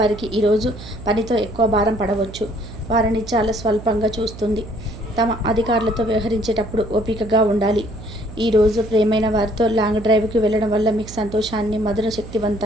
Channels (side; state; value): right; noise; hum, 14 dB below the sound